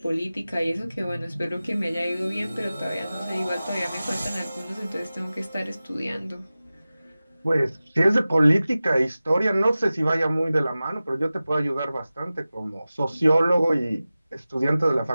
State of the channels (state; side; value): inverted; both; correlation -0.96